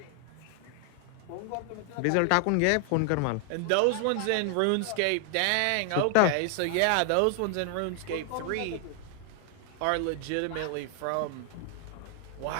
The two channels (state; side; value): different; both; correlation 0.00